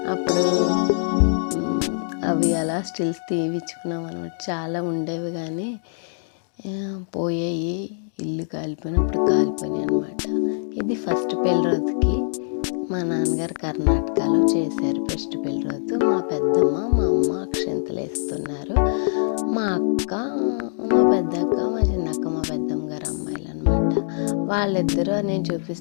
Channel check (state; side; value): silent; right; digital silence